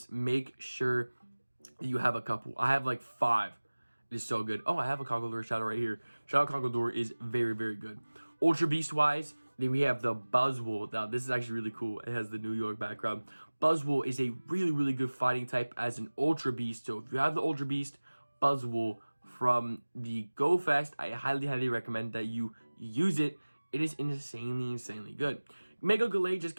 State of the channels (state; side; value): inverted; both; correlation -1.00